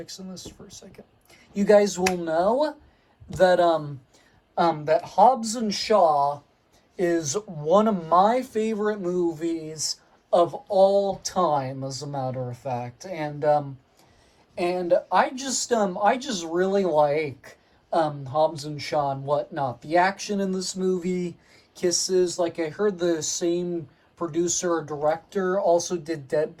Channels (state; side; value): identical; both; correlation 1.00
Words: this for a second. You guys will know that that Hobbs and Shaw is one of my favorite movies of all time, as a matter of fact. And I just really like Hobbs and Shaw and whatnot. The action in this movie kisses. Like, I heard the same producer or director also did